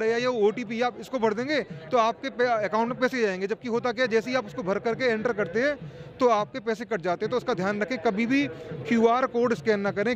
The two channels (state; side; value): identical; both; correlation 1.00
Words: है या ये OTP, आप इसको भर देंगे तो आपके अकाउंट में पैसे जाएंगे। जबकि होता क्या है, जैसे ही आप उसको भर करके एंटर करते हैं तो आपके पैसे कट जाते हैं। तो उसका ध्यान रखें, कभी भी QR कोड स्कैन ना करें।